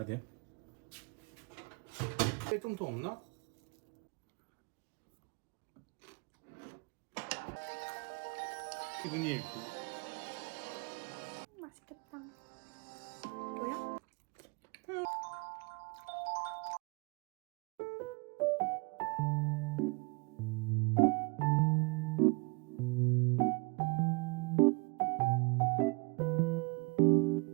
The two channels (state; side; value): quieter; left; 31.8 dB